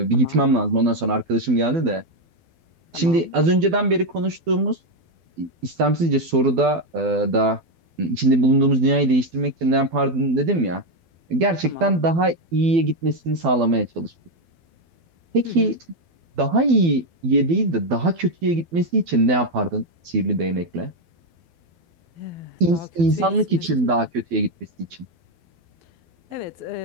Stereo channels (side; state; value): left; late; 12 ms